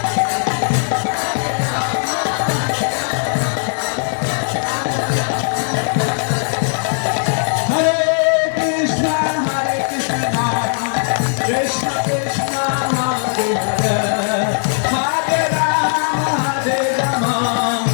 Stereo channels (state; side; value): silent; right; 67 dB below the other